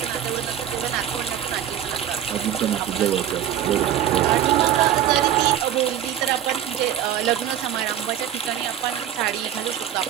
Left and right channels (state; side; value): quieter; left; 10.8 dB